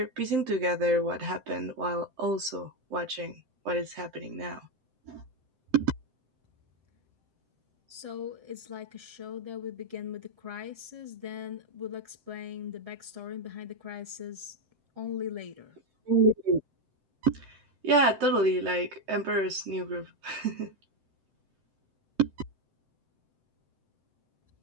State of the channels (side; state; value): left; late; 7.8 ms